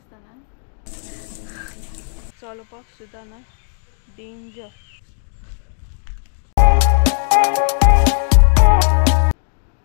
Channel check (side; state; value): right; silent; digital silence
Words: ना चलपाक सुद्दां ना डेंजर